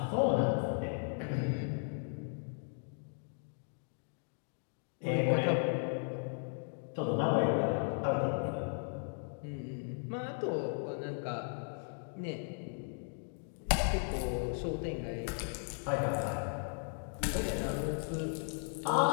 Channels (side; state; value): right; silent; 54 dB below the other